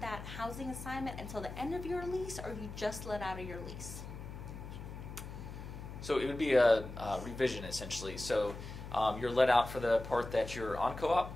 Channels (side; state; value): left; noise; hum, 10 dB below the sound